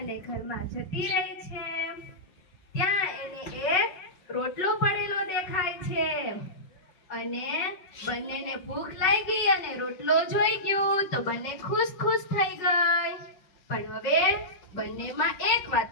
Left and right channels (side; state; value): right; late; 5.3 ms